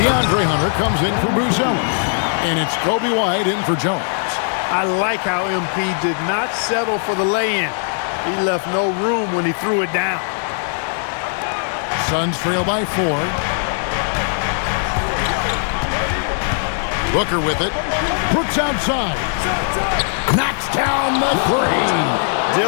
Hunter comes in for Buzelis. And it's Kobe White in for Jones. I like how MP did not settle for the lay-in. He left no room when he threw it down. Suns trail by 4. Booker with it. Brooks outside. Knocks down the 3.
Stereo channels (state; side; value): silent; right; digital silence